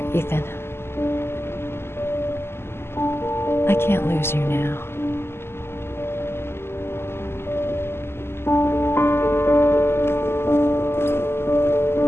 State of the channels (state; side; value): late; right; 0.12 ms